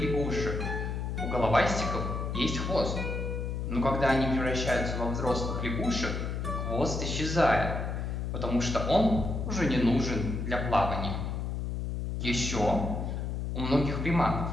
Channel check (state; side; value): noise; left; hum, 3 dB below the sound